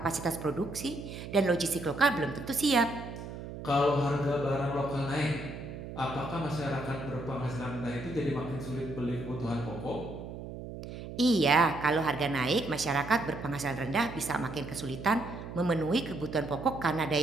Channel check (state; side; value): noise; right; hum, 10 dB below the sound